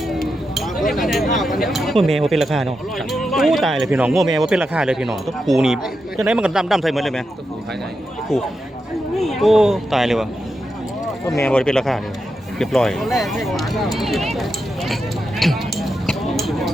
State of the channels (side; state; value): both; normal; correlation 0.87